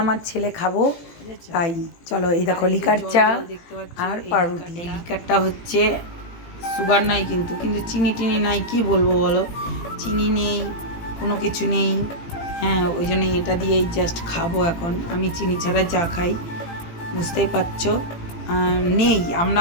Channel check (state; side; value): late; right; 18 ms